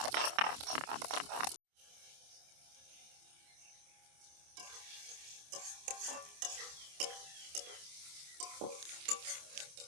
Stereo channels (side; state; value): left; late; 27 ms